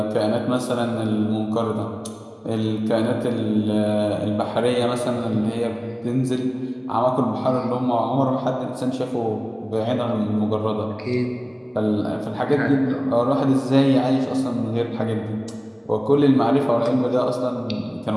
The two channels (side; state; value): both; identical; correlation 1.00